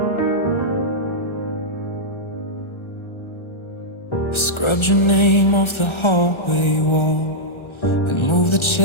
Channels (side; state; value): right; late; 1.3 ms